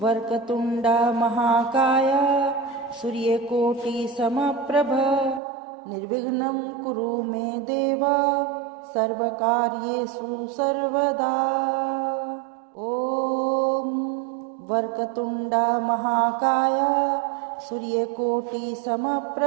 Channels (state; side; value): drops out; left; at 5.4 s